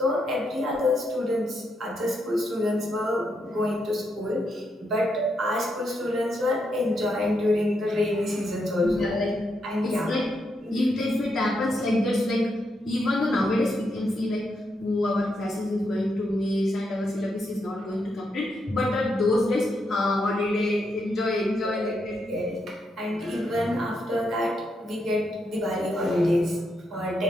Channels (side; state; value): both; normal; correlation 0.81